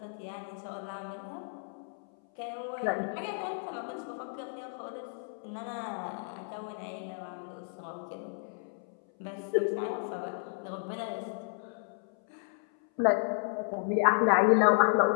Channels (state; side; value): silent; right; 56 dB below the other